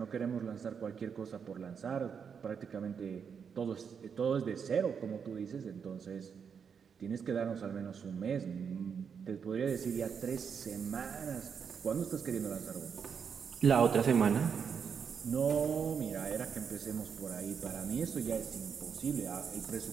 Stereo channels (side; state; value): left; quieter; 6.8 dB